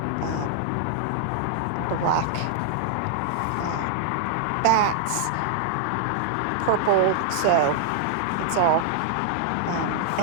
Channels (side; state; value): both; different; correlation -0.01